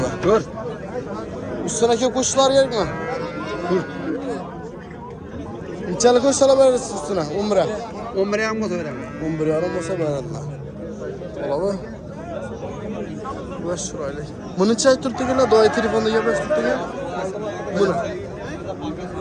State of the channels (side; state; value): both; identical; correlation 1.00